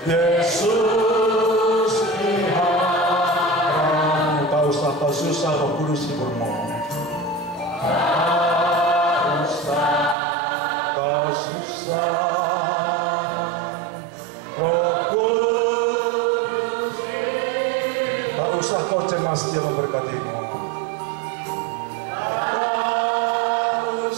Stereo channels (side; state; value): left; drops out; at 10.2 s